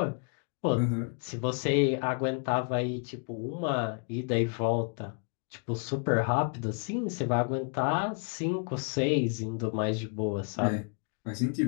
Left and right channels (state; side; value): quieter; right; 39.3 dB